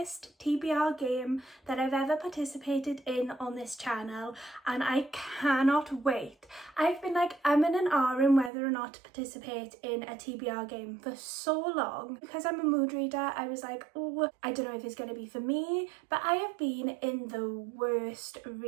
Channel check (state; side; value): drops out; left; at 8.5 s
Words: TBR game that I've ever participated in on this channel and I cannot wait. I've been like umming and ahhing whether or not to participate in a TBR game for so long. Because I'm a mood reader, I was like, oh, I don't know if it's going to be for me, but I have been in the worst